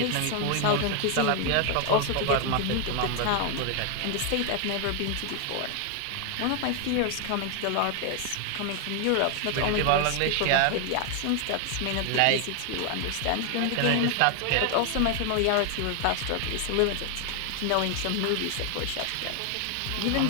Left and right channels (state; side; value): different; both; correlation 0.00